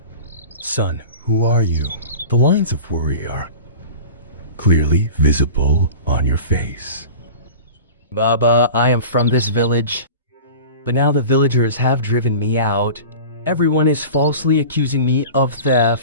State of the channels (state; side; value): inverted; both; correlation -0.36